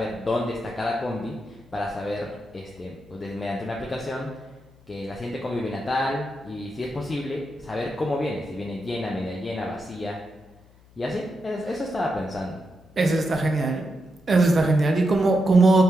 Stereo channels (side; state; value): left; noise; hum, 27 dB below the sound